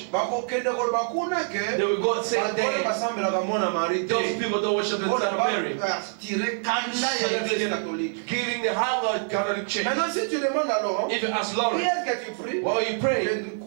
Bakokende koloba kuna ke They will go and say bato that basambelaka mwana Marie te. those people don't worship the Son of Mary. Tire kanda ya l'église catholique. Giving the hunger Catholic Church. Maintenant, si tu demandes à Laurent, If you ask qui Lawrence, est-ce que tu pries? while you Je pray, ne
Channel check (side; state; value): left; silent; 61 dB below the other